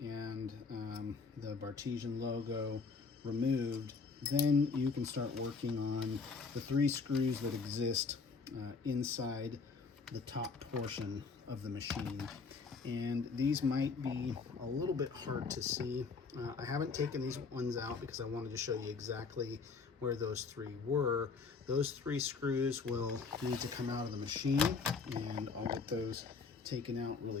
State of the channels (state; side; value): quieter; right; 4.8 dB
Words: and the Bartesian logo removed, then you can start working on the 3 screws that exist inside the top portion of the machine. And these might be a little bit hard to see. I haven't taken these ones out because I wanted to show you exactly where those 3 were. Those 3 screws will need to come out of the machine, and I'll get those taken out